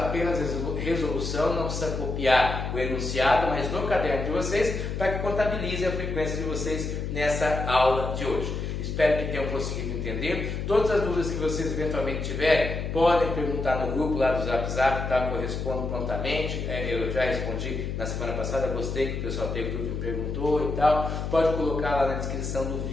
resolução, não precisa copiar o enunciado, mas no caderno de vocês, para que contabilize a frequência de vocês nessa aula de hoje. Espero que tenham conseguido entender. Todas as dúvidas que vocês eventualmente tiverem, podem perguntar no grupo lá do Zap Zap, tá? Que eu respondo prontamente. Eu já respondi na semana passada, gostei que o pessoal teve dúvida e perguntou e tal. Pode colocar lá na descrição do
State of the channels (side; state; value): left; noise; hum, 4 dB below the sound